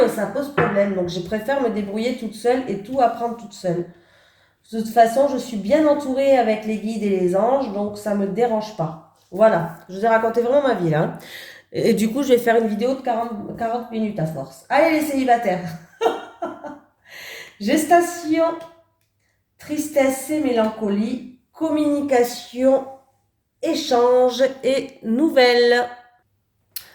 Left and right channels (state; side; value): identical; both; correlation 1.00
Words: ça pose problème. Donc, je préfère me débrouiller toute seule et tout apprendre toute seule. De toute façon, je suis bien entourée avec les guides et les anges, donc ça ne me dérange pas. Voilà, je vous ai raconté vraiment ma vie là, hein. Et du coup, je vais faire une vidéo de 40 minutes à force. Allez les célibataires. Gestation, tristesse et mélancolie, communication, échange et nouvelles.